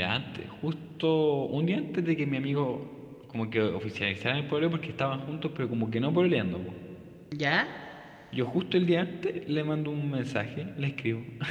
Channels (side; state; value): both; identical; correlation 1.00